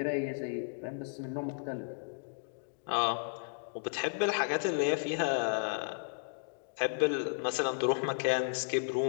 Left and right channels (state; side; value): silent; right; digital silence